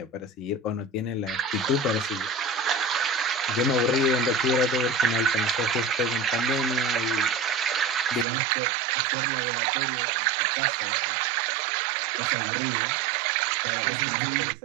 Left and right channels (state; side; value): drops out; left; at 8.2 s